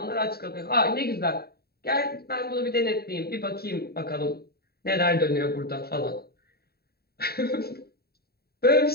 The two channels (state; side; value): late; right; 0.45 ms